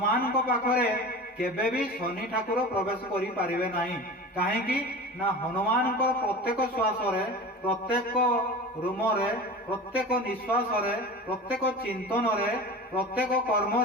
ପାଖରେ କେବେ ବି ଶନି ଠାକୁର ପ୍ରବେଶ କରିପାରିବେ ନାହିଁ। କାହିଁକି ନା ହନୁମାନଙ୍କ ପ୍ରତ୍ୟେକ ଶ୍ୱାସରେ, ପ୍ରତ୍ୟେକ ରୁମରେ, ପ୍ରତ୍ୟେକ ନିଶ୍ୱାସରେ, ପ୍ରତ୍ୟେକ ଚିନ୍ତନରେ, ପ୍ରତ୍ୟେକ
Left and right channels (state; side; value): normal; both; correlation 0.33